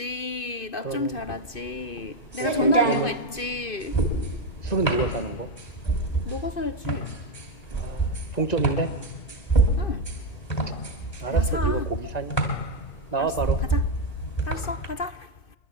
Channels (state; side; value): late; right; 2.5 ms